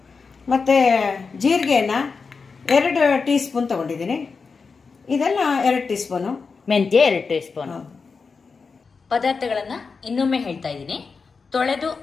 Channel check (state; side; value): quieter; right; 4.9 dB